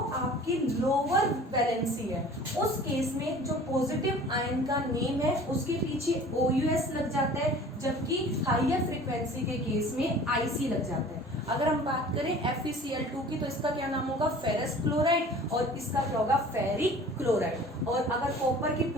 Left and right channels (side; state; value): both; normal; correlation 0.45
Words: आपकी लोअर वैलेंसी है उस केस में जो पॉजिटिव आयन का नेम है उसके पीछे OUS लग जाता है, जबकि हायर फ्रीक्वेंसी के केस में IC लग जाता है। अगर हम बात करें FeCl2 की तो इसका क्या नाम होगा, फेरस क्लोराइड, और इसका क्या होगा, फेरिक क्लोराइड। और अगर कॉपर की